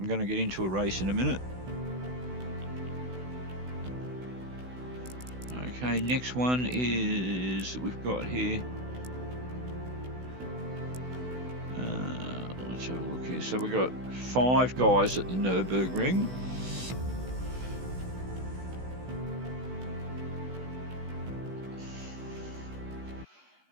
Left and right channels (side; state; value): left; late; 16 ms